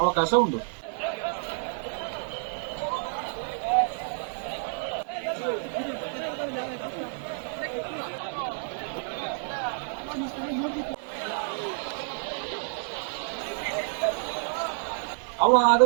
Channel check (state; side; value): silent; left; digital silence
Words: ಅವಕಾಶ ಉಂಟು ಅವ ಅದು